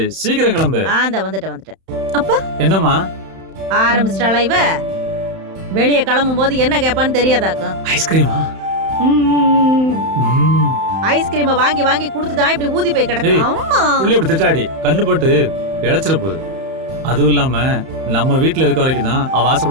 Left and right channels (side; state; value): left; late; 31 ms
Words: சீக்கிரம் கிளம்பு. அந்த வந்துட்டேன். அப்பா என்னம்மா? ஆரம்பிச்சிட்டாளா இவ? வெளியே கிளம்பும் போது என்ன கேட்பான்னு தெரியாதாக்கும். ஐஸ்கிரீமா? ஐஸ்கிரீமை வாங்கி வாங்கி கொடுத்துதான் இப்படி ஊதி போய் கிடக்கு. அம்மா புள்ளி இப்படி திட்டாடி கண்ணு போட்டு இழைச்சிட போகுது. அதுவும் இல்லாம நம்ம வீட்டுல இருக்க வரைக்கும் தான் அவ